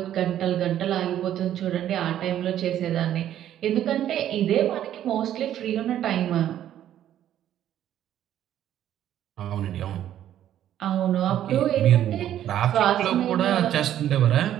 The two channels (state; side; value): quieter; left; 11.4 dB